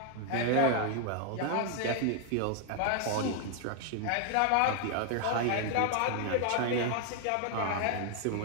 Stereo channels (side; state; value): both; different; correlation 0.00